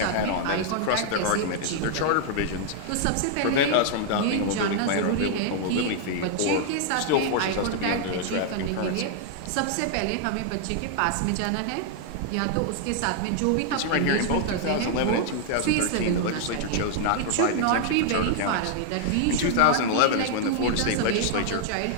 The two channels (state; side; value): different; both; correlation 0.00